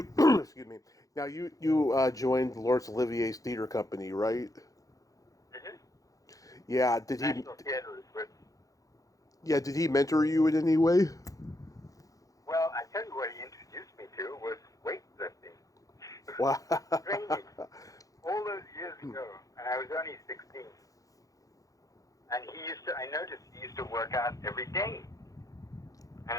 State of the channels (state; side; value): late; right; 0.17 ms